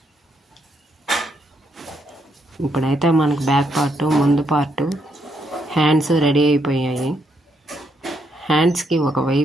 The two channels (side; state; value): both; normal; correlation 0.76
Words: ఇప్పుడైతే మనకు బ్యాక్ పార్ట్, ముందు పార్ట్, హ్యాండ్స్ రెడీ అయిపోయాయి. హ్యాండ్స్కి